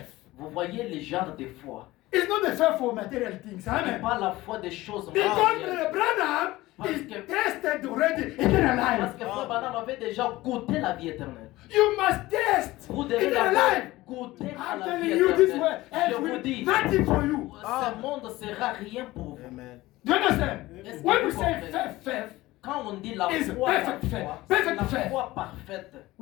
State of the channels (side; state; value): right; quieter; 18.3 dB